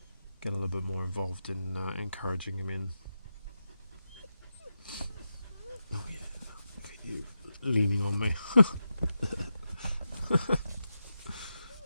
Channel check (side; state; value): both; inverted; correlation -0.89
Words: get a little bit more involved in encouraging him in. Oh yeah, look at you leaning on me.